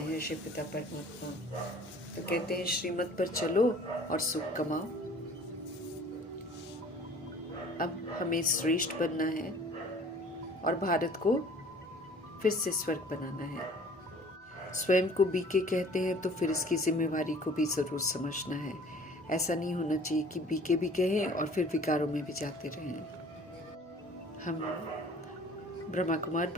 हैं शिव पिता परमात्मा, तो कहते हैं श्रीमत पर चलो और सुख कमाओ। अब हमें श्रेष्ठ बनना है और भारत को फिर से स्वर्ग बनाना है। स्वयं को बीके कहते हैं तो फिर इसकी जिम्मेवारी को भी जरूर समझना है। ऐसा नहीं होना चाहिए कि बीके भी कहें और फिर विकारों में भी जाते रहें। हम ब्रह्मा कुमार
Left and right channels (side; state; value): both; normal; correlation 0.50